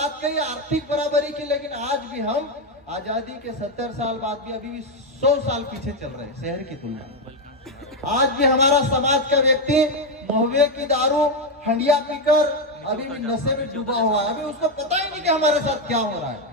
कही, आर्थिक बराबरी की, लेकिन आज भी हम आजादी के 70 साल बाद भी अभी भी 100 साल पीछे चल रहे हैं शहर की तुलना में। आज भी हमारा समाज का व्यक्ति महुए की दारू हंडिया पीकर अभी भी नशे में डूबा हुआ है। अभी उसको पता ही नहीं कि हमारे साथ क्या हो रहा है।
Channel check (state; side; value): normal; both; correlation 0.05